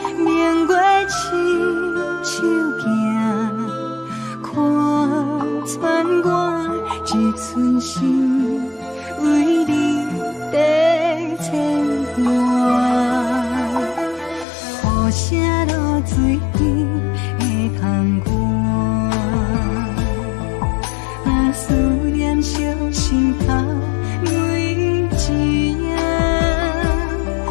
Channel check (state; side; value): drops out; right; at 14.5 s